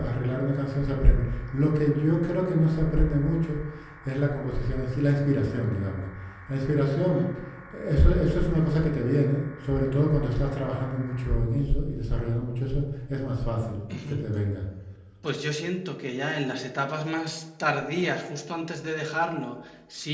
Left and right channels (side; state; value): both; identical; correlation 1.00